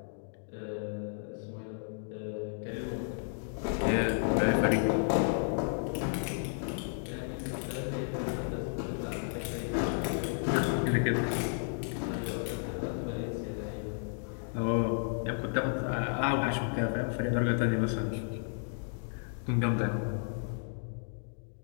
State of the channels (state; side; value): silent; right; digital silence